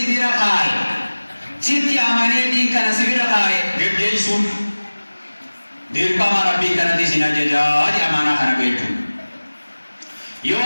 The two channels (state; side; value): inverted; both; correlation -1.00